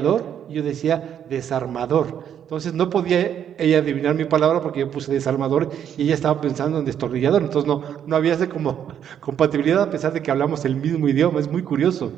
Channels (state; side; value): quieter; left; 9.2 dB